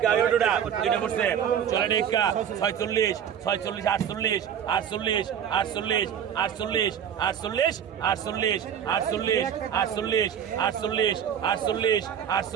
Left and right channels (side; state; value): left; quieter; 8.9 dB